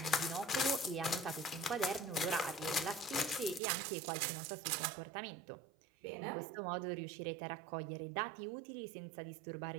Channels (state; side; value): drops out; left; at 3.6 s